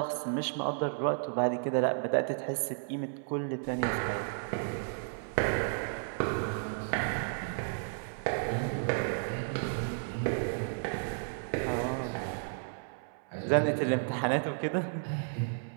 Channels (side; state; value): left; silent; 56 dB below the other